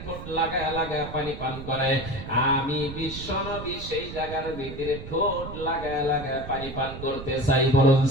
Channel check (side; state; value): right; noise; rumble, 11 dB below the sound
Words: ঠোঁট লাগায় লাগায় পানি পান করে। আমি বিশ্বনবী সেই জায়গার ভিতরে ঠোঁট লাগায় লাগায় পানি পান করতে চাই। বলুন